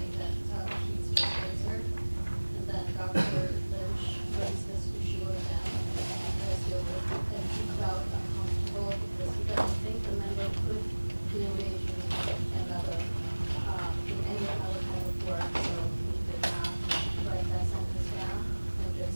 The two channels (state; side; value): inverted; both; correlation -1.00